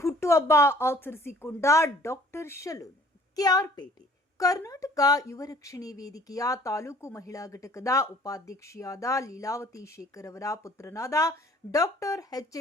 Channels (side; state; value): both; normal; correlation 0.55